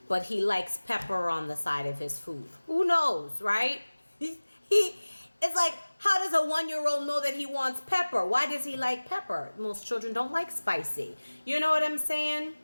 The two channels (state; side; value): inverted; both; correlation -1.00